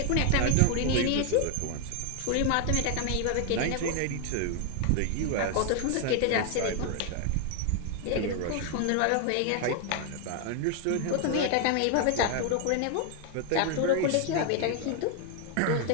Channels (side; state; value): both; different; correlation 0.00